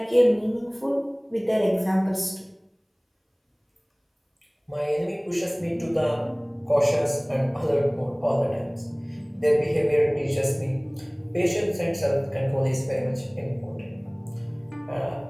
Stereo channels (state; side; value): identical; both; correlation 1.00